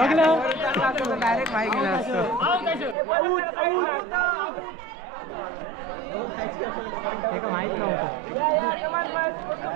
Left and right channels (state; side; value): drops out; left; at 3.0 s